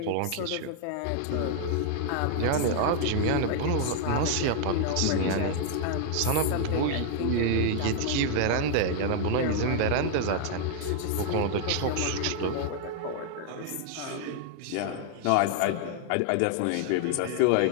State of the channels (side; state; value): both; different; correlation 0.00